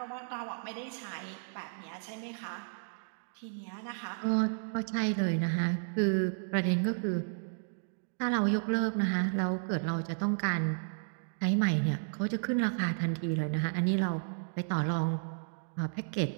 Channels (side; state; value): left; silent; digital silence